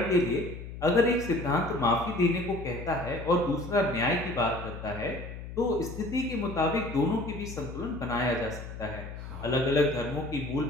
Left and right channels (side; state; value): left; noise; hum, 10 dB below the sound